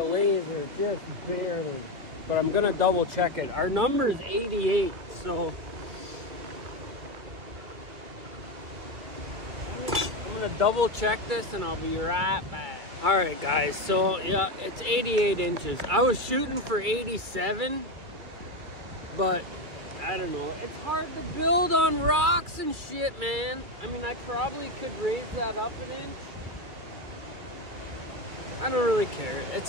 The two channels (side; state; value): left; late; 2.5 ms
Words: laser just barely, but I'm gonna double check it. Our number is 88, so I'm gonna double check this and I'll be right back. All right, guys, so yeah, it's 88 inches. I was shooting for 87, but I don't know. It's hard to build on rocks and shit, man. I mean, I probably could raise that up an inch. I don't really care.